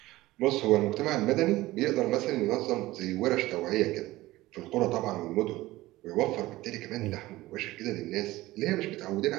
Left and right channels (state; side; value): quieter; left; 17.9 dB